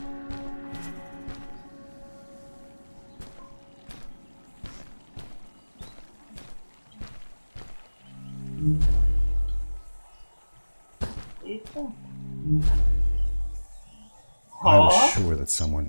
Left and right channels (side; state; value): both; inverted; correlation -1.00